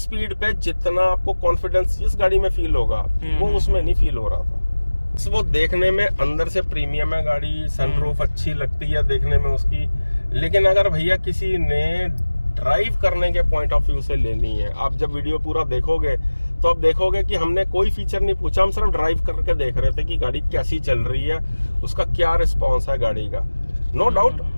पे जितना आपको कॉन्फिडेंस इस गाड़ी में फील होगा वो उसमें नहीं फील हो रहा था। वो देखने में अंदर से प्रीमियम है गाड़ी, सनरूफ अच्छी लगती है देखने में उसकी, लेकिन अगर भैया किसी ने ड्राइव करने के पॉइंट ऑफ व्यू से लेनी है, आप जब वीडियो पूरा देखोगे तो आप देखोगे कि हमने कोई फीचर नहीं पूछा, हम सिर्फ ड्राइव करके देख रहे थे कि गाड़ी कैसी चल रही है, उसका क्या रिस्पॉन्स है गाड़ी का। नो डाउट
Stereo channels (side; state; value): both; inverted; correlation -1.00